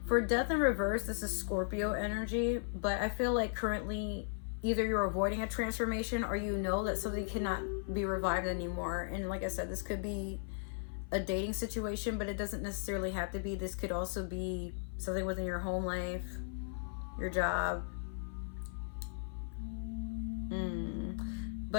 for Death in reverse, this is Scorpio energy, but I feel like currently either you're avoiding a transformation or you know that something cannot be revived anymore. And like I said, this could be a dating situation, but it doesn't necessarily have to be. This could also be something within your home life, your job.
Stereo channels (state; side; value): silent; right; 53 dB below the other